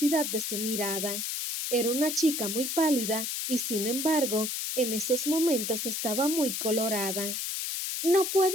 de su mirada. Era una chica muy pálida, y sin embargo, en esos momentos estaba muy colorada. «No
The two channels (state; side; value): noise; left; hiss, 2 dB below the sound